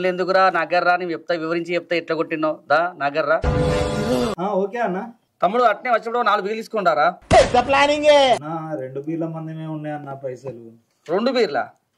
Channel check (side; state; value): both; identical; correlation 1.00